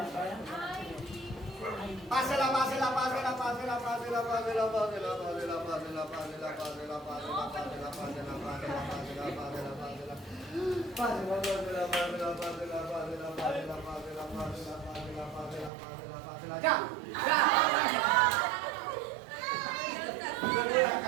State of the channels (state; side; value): drops out; left; at 15.7 s